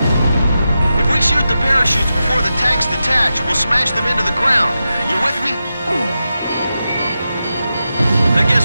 If we shoot the parachutes before the tanks detach, we'll smash them into the ground. You with me? I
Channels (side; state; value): both; inverted; correlation -0.90